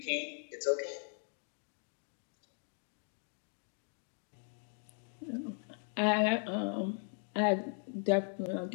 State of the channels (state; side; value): silent; right; 52 dB below the other